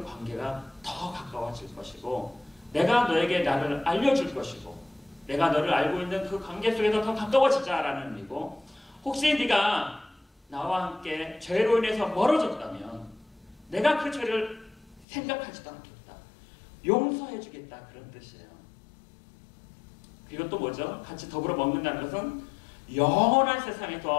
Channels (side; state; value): right; drops out; at 15.1 s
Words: 관계가 더 가까워질 것이고 내가 너에게 나를 알려줄 것이고 내가 너를 알고 있는 그 관계 속에서 더 가까워지자라는 의미고, 혹시 네가 나와 함께 죄로 인해서 멀어졌다면 내가 그 죄를 생각하지도 않겠다. 용서해주겠다. 그런 뜻이에요. 그리고 또 뭐죠? 같이 더불어 먹는다는 것은 영원한